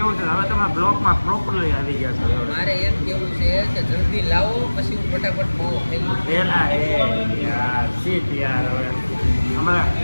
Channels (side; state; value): both; inverted; correlation -1.00